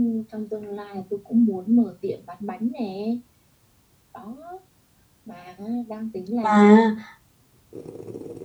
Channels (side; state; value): both; identical; correlation 1.00